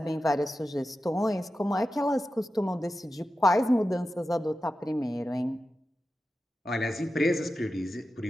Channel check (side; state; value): both; normal; correlation 0.92